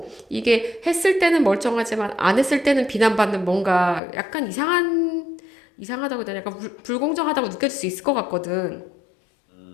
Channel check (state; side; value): drops out; right; at 4.0 s